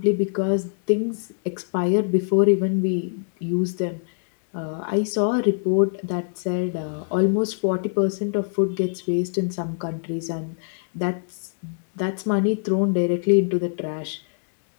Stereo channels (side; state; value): right; silent; digital silence